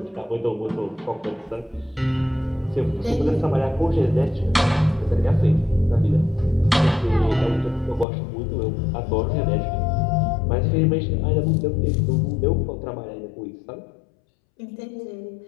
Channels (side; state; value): right; drops out; at 8.1 s